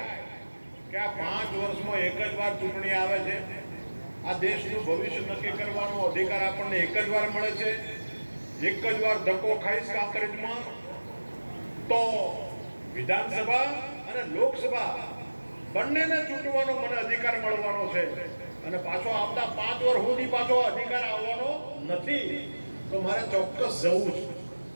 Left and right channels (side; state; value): both; inverted; correlation -1.00